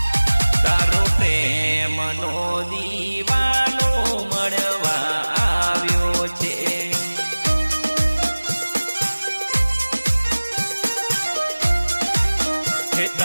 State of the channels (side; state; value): both; inverted; correlation -1.00